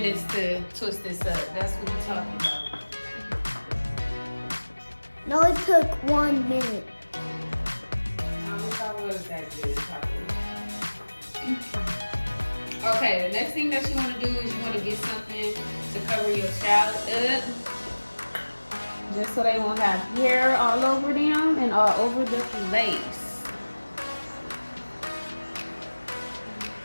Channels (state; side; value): inverted; both; correlation -1.00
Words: to twist this up. That's what we're talking about. No, it took 1 minute. I wish I was that good. Okay, the next thing that you want to do is you want to get something to cover your child up, just so they won't have hair all over them and all over the lace.